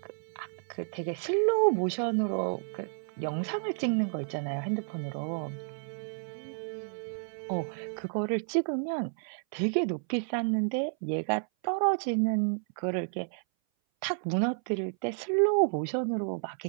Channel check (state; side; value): silent; left; 57 dB below the other